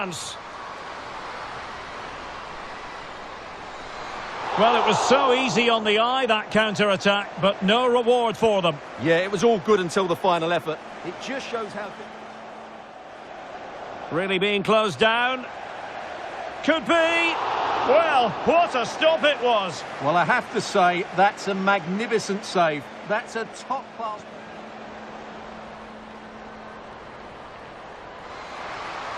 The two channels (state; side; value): identical; both; correlation 1.00